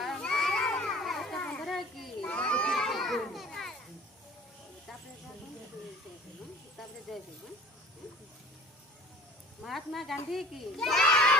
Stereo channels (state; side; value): normal; both; correlation 0.46